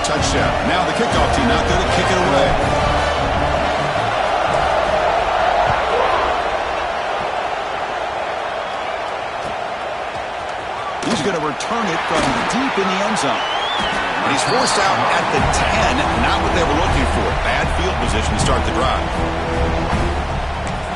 touchdown. Now the kickoff team out there to kick it away. He's going to return it from deep in the end zone. And he's forced out at the 10. Not what they were looking for. Bad field position to start the drive.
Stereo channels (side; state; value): both; identical; correlation 1.00